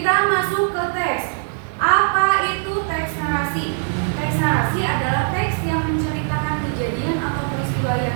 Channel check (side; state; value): left; silent; digital silence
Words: masuk ke teks. Apa itu teks narasi? Teks narasi adalah teks yang menceritakan kejadian atau peristiwa